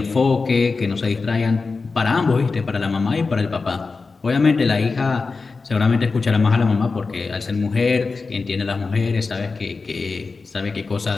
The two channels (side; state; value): right; quieter; 4.3 dB